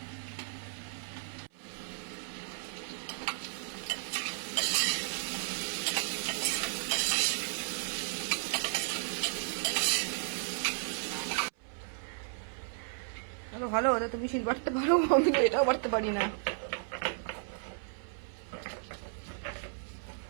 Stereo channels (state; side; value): silent; left; 55 dB below the other